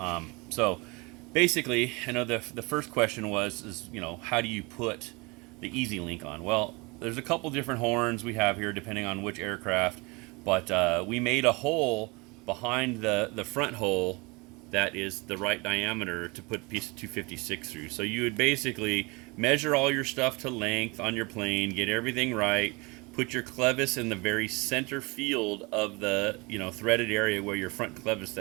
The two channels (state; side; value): quieter; left; 26.8 dB